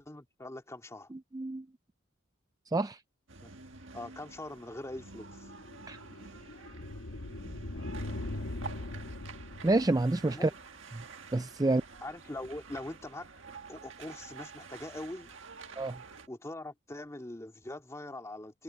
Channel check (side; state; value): both; normal; correlation 0.77